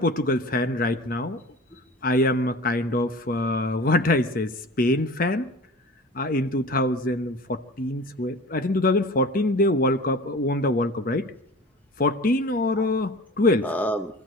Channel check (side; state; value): both; normal; correlation 0.38